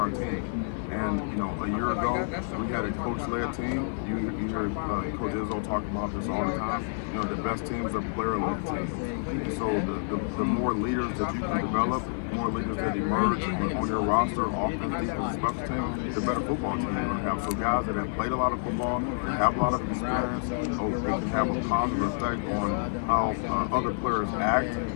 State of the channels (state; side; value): silent; right; digital silence